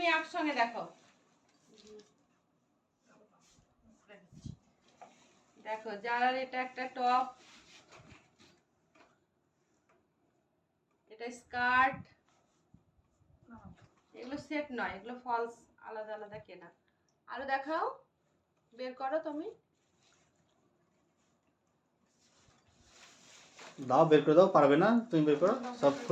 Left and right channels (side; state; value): both; identical; correlation 1.00